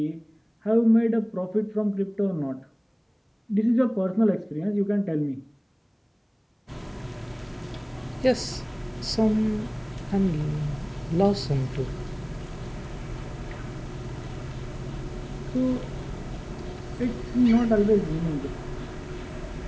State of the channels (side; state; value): both; identical; correlation 1.00